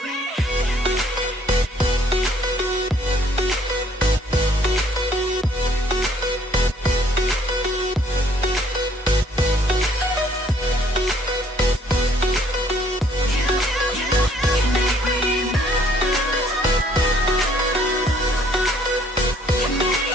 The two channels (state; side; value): normal; both; correlation 0.62